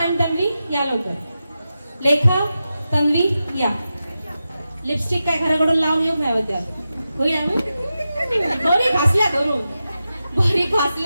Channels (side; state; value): both; inverted; correlation -0.91